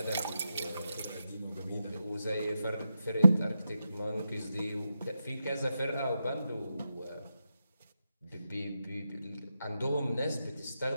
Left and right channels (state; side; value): inverted; both; correlation -0.88